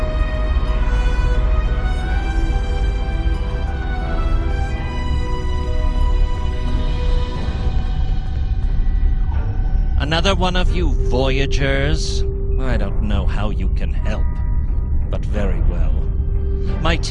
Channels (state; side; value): identical; both; correlation 1.00